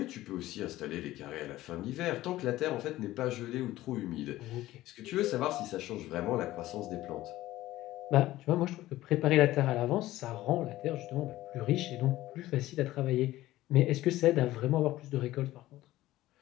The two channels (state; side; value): quieter; right; 16.0 dB